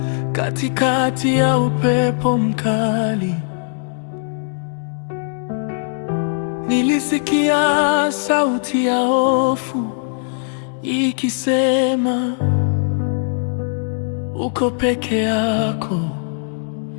katikati ya upepo mkali. Nilisikia sauti ya hofu ikisema, uko peke yako.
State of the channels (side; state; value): right; silent; digital silence